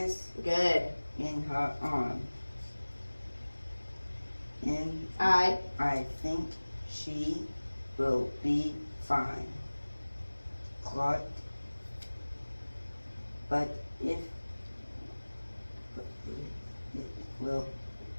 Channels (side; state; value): both; inverted; correlation -1.00